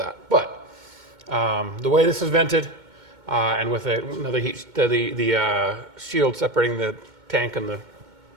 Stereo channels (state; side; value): late; left; 2.2 ms